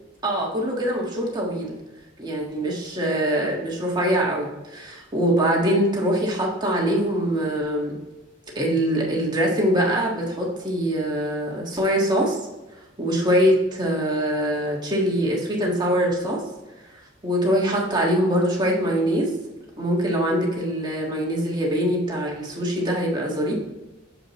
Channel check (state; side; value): normal; both; correlation 0.43